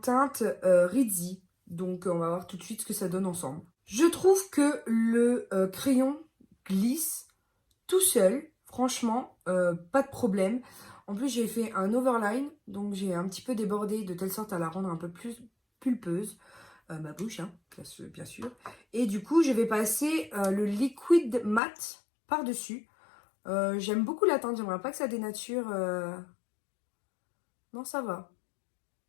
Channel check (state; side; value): drops out; right; at 21.6 s